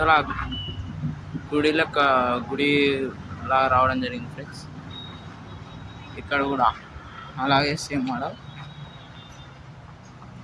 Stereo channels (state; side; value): identical; both; correlation 1.00